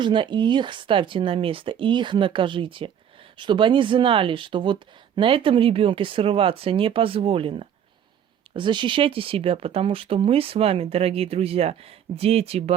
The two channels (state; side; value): quieter; left; 9.0 dB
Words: и их ставьте на место, и их накажите. чтобы они знали, что вот на этом ребенке срываться не позволено. Защищайте себя, потому что мы с вами, дорогие друзья, дети